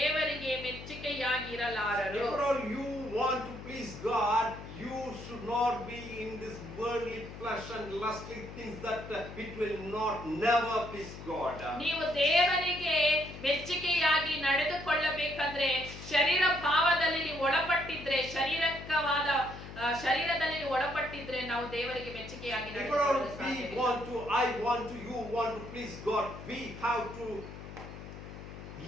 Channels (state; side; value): noise; left; hum, 12 dB below the sound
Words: ಮೆಚ್ಚುಗೆಯಾಗಿ ಇರಲಾರರು. If all you want to please God, you should not be in this worldly flesh and lustly things that it will never please God. ನೀವು ದೇವರಿಗೆ ಮೆಚ್ಚುಗೆಯಾಗಿ ನಡೆದುಕೊಳ್ಳಬೇಕಂದ್ರೆ ಶರೀರ ಭಾವದಲ್ಲಿ ನೀವು ಒಳಪಟ್ಟಿದ್ರೆ, ಶಾರೀರಿಕವಾದ ಶರೀರದಲ್ಲಿ ನೀವು ಒಳಪಟ್ಟಿದ್ರೆ ನಾವು ದೇವರಿಗೆ ಮೆಚ್ಚುಗೆಯಾಗಿ If ನಡೆದುಕೊಳ್ಳಲು we ಸಾಧ್ಯವಿಲ್ಲ. want to, I want to, you want to please God, we have to